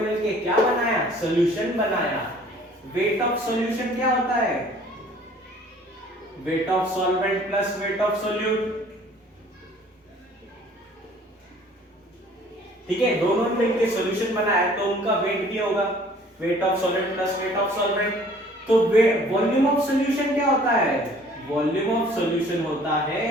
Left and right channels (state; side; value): normal; both; correlation 0.53